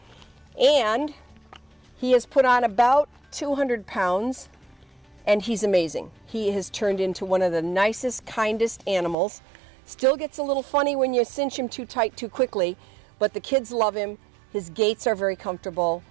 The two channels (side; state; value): left; drops out; at 9.2 s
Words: And he has put on about 200 pounds, and he's amazing. He has turned into one of the nicest, kindest animals. Still gets a little funny when you cinch him too tight too quickly, but the kids love him. His gaits are very comfortable,